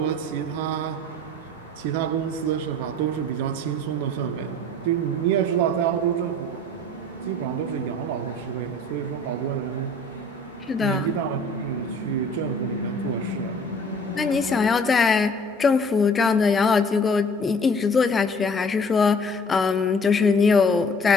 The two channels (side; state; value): both; normal; correlation 0.50